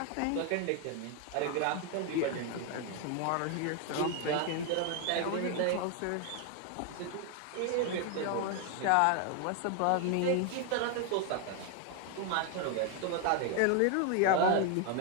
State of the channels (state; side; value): different; both; correlation 0.01